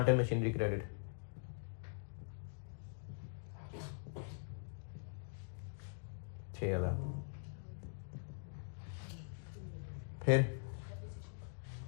and machinery credit 6,000। फिर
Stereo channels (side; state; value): right; silent; digital silence